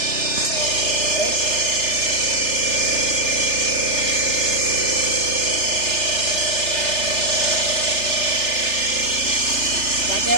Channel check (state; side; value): late; right; 3.3 ms